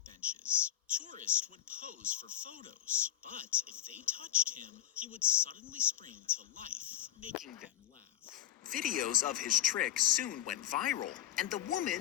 benches. Tourists would pose for photos, but if they touched him, he would suddenly spring to life, making them laugh. Videos of his trick soon went viral, and the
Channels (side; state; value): right; quieter; 11.6 dB